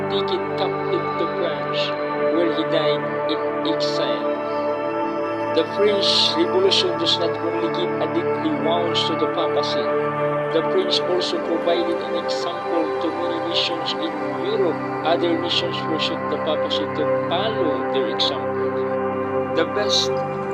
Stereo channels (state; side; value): identical; both; correlation 1.00